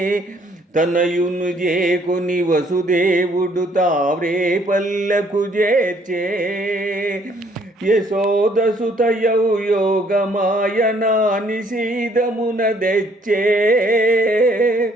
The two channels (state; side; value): normal; both; correlation 0.64